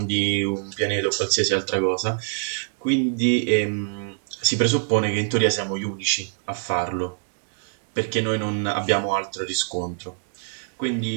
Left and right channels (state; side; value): silent; left; digital silence